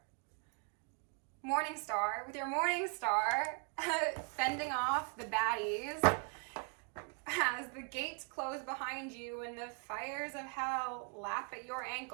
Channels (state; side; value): quieter; left; 38.5 dB